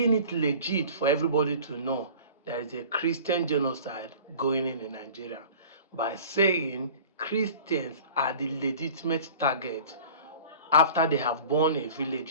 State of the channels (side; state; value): both; inverted; correlation -0.43